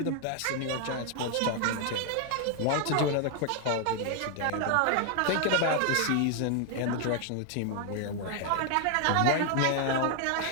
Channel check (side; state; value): both; different; correlation 0.00